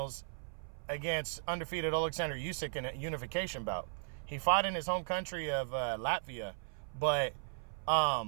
against undefeated Alexander Usyk in a unification bout. He fought in his home country of Latvia, but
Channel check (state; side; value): silent; left; 53 dB below the other